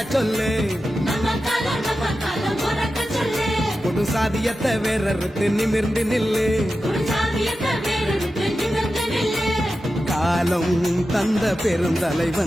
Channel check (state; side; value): normal; both; correlation 0.92